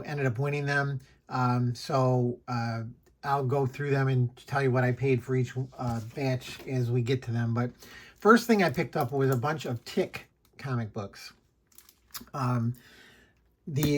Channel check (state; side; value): identical; both; correlation 1.00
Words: ended up winning them. I'll go through them and tell you what I paid for each batch as we get to them. But first thing I picked up was a bunch of Tick comic books.